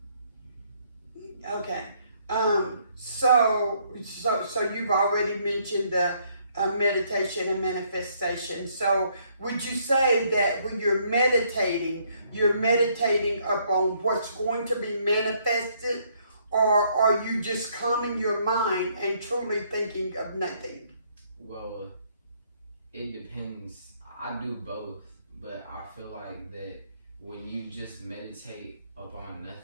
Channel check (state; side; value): inverted; both; correlation -0.68